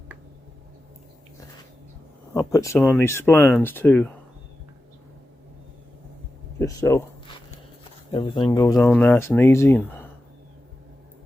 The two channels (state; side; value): normal; both; correlation 0.92